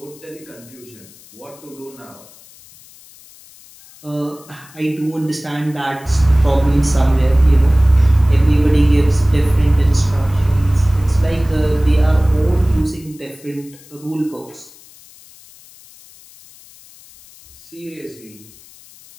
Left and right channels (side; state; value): left; noise; hiss, 24 dB below the sound